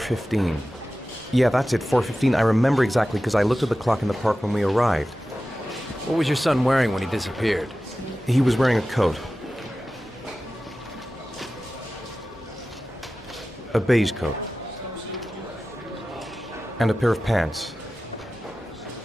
Yeah, that's it, 4:15. I remember exactly because I looked at the clock in the park when we arrived. What was your son wearing when he disappeared? He was wearing a coat. A beige coat. And a pair of pants.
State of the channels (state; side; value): normal; both; correlation 0.95